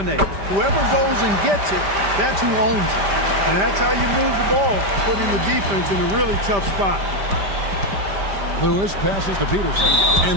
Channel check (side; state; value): left; late; 5.1 ms